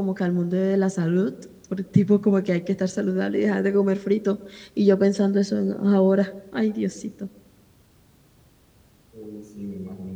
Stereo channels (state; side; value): identical; both; correlation 1.00